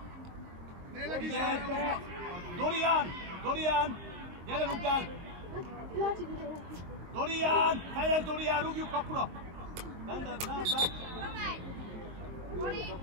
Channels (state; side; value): late; left; 23 ms